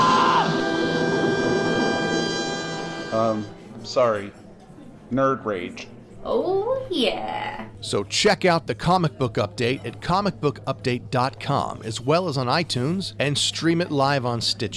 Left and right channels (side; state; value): both; identical; correlation 1.00